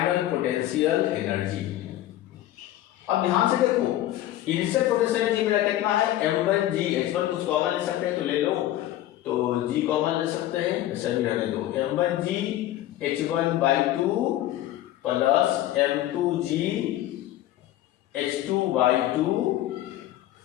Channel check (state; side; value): quieter; right; 14.0 dB